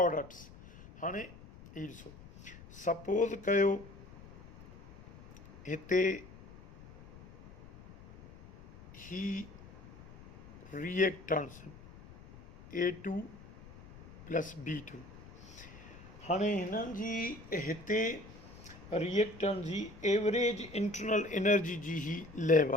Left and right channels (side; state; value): left; noise; rumble, 19 dB below the sound